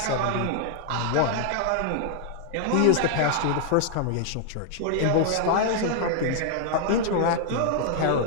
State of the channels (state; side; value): different; both; correlation 0.00